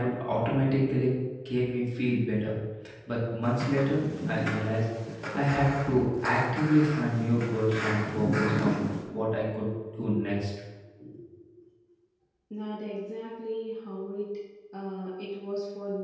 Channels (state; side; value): identical; both; correlation 1.00